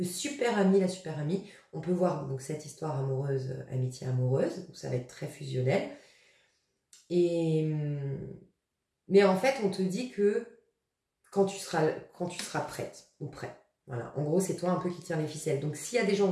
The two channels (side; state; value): both; identical; correlation 1.00